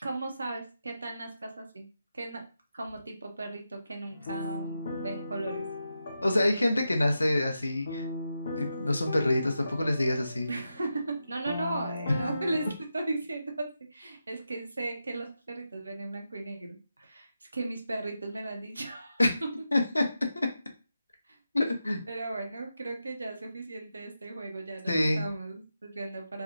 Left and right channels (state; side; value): inverted; both; correlation -0.88